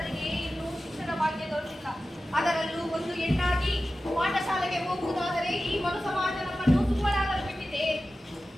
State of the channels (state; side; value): normal; both; correlation 0.94